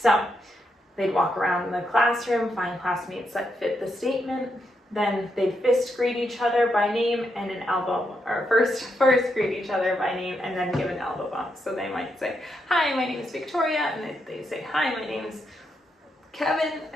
they'd walk around in the classroom, find classmates that fit the statement, then they'd fist greet each other by name and an elbow, or first greet each other by name and then give an elbow bump. So they might say, hi, my name is Victoria, and they say, hi, my name's Kevin,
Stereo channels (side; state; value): both; normal; correlation 0.81